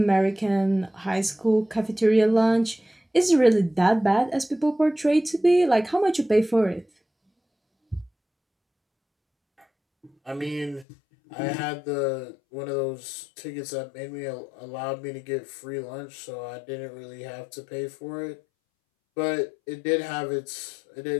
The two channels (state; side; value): drops out; right; at 10.9 s